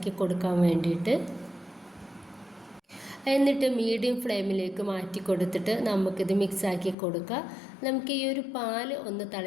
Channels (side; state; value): right; drops out; at 7.0 s